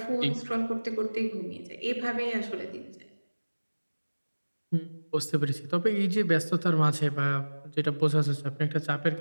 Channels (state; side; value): inverted; both; correlation -1.00